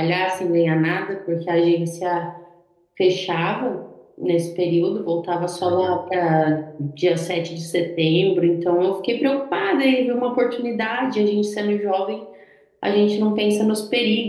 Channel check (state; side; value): identical; both; correlation 1.00